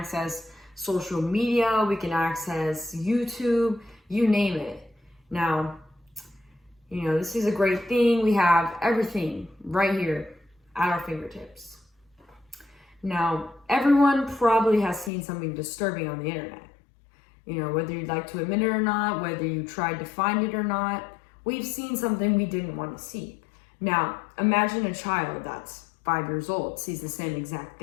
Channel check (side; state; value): right; drops out; at 15.1 s